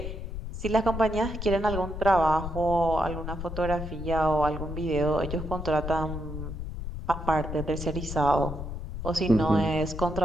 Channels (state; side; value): noise; left; rumble, 7 dB below the sound